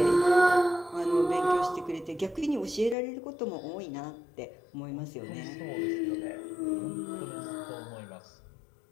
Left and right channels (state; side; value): drops out; right; at 3.0 s